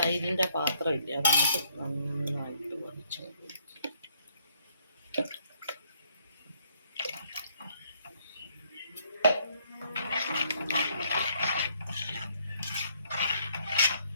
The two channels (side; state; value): both; inverted; correlation -0.68